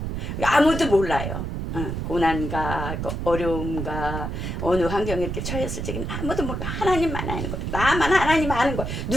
아무도 몰라요. 고난과 그 어려움과 어느 환경에 이렇게 처했을 적에는 아무도 모르고 하나님만 아는 거예요. 나만 하나님 아는 거예요.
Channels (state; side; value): noise; right; rumble, 4 dB below the sound